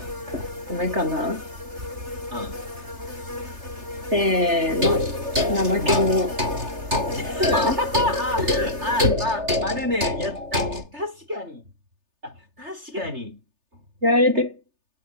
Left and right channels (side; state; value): left; late; 3.3 ms